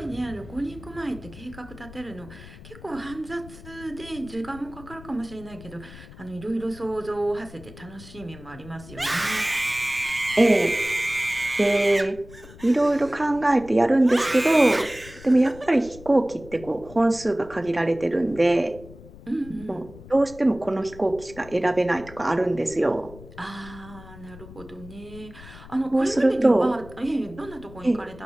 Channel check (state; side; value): noise; left; rumble, 18 dB below the sound